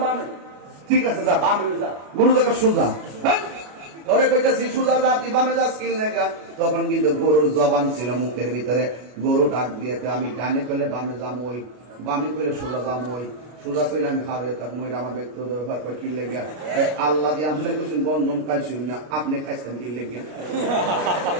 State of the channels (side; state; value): left; late; 33 ms